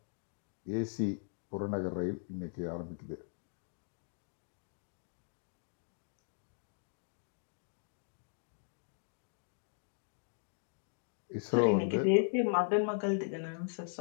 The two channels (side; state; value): right; silent; digital silence